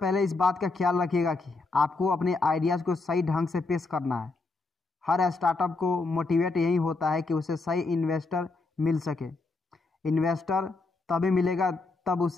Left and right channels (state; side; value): quieter; right; 3.6 dB